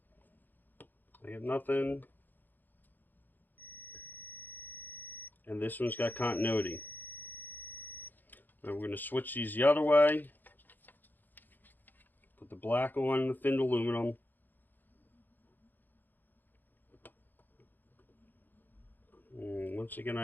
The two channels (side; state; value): right; late; 0.088 ms